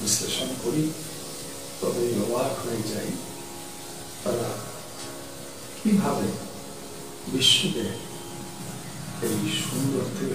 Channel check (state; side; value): identical; both; correlation 1.00